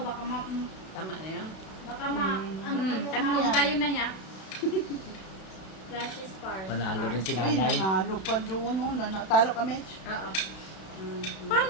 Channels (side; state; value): right; late; 32 ms